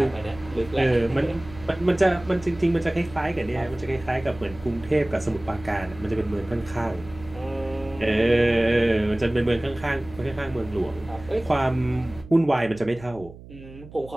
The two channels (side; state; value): right; noise; hum, 18 dB below the sound